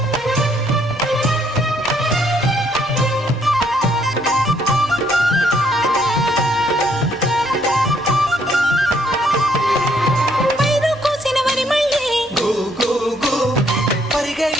పైరు కోసిన వరి మళ్ళీ గు గు గు పరిగ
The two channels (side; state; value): both; normal; correlation 0.69